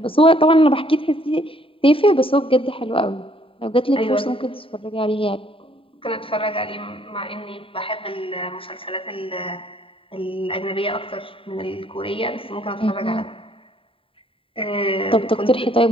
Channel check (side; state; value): right; late; 0.26 ms